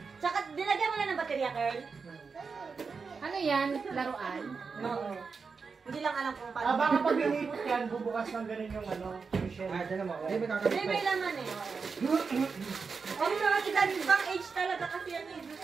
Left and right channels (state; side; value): quieter; left; 5.1 dB